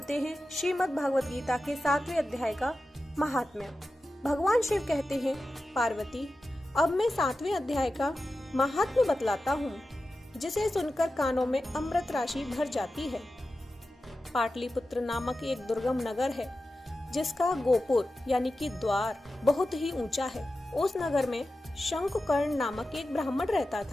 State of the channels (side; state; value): both; normal; correlation 0.93